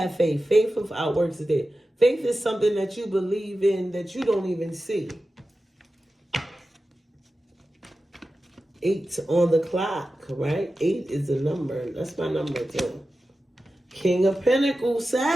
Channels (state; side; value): normal; both; correlation 0.93